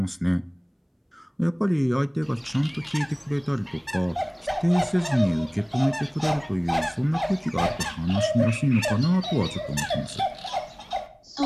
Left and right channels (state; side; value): identical; both; correlation 1.00